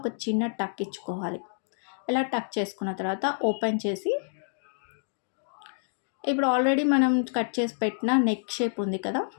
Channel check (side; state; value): right; silent; digital silence